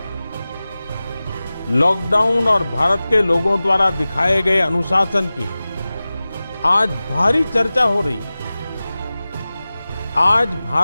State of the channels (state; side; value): inverted; both; correlation -0.97